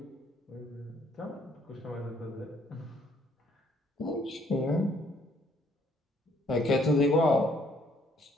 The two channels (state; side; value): normal; both; correlation 0.65